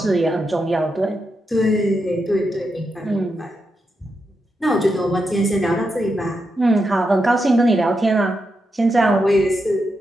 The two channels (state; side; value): normal; both; correlation 0.85